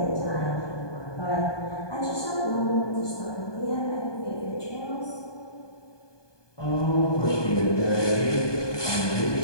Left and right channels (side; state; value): right; late; 1.2 ms